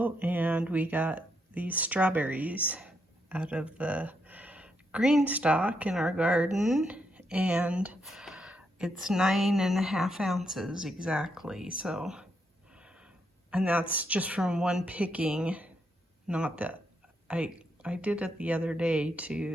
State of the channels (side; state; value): both; normal; correlation 0.79